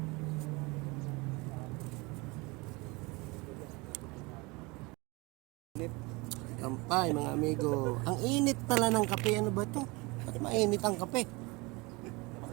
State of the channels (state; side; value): quieter; left; 25.3 dB